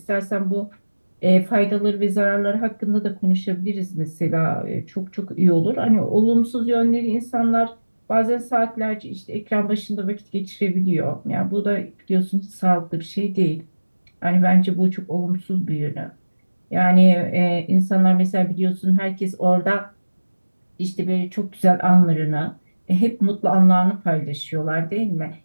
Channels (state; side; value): inverted; both; correlation -1.00